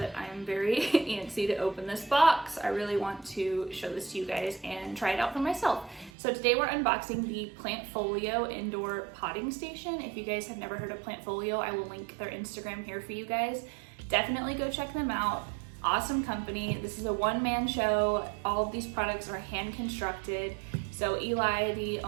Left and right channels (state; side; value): drops out; left; at 6.1 s